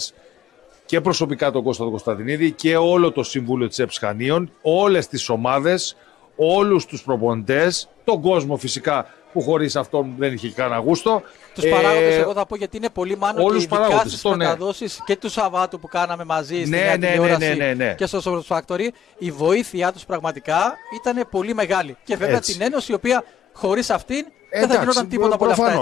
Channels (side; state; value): right; quieter; 11.5 dB